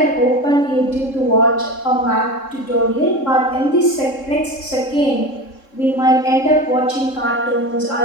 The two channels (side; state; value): right; late; 3.7 ms